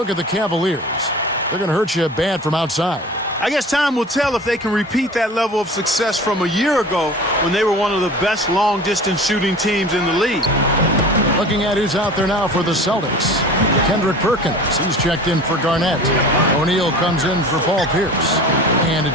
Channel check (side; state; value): both; normal; correlation 0.39